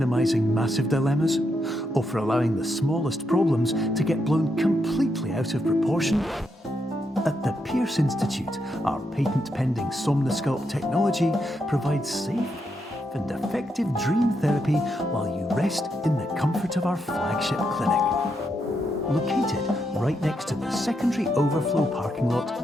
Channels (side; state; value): both; normal; correlation 0.81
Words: massive dilemmas, or for allowing the smallest problems to get blown completely out of proportion? At the Pierce Institute, our patent-pending Somnosculpt technology provides safe and effective dream therapy while you rest in the comfort of our flagship clinic. Located right next to the secondary overflow parking lot